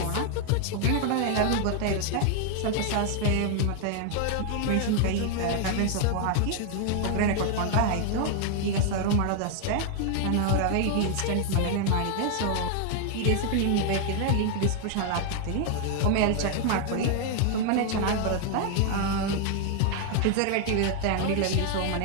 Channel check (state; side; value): different; both; correlation 0.00